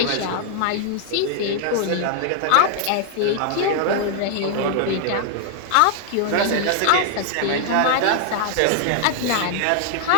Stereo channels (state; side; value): different; both; correlation 0.00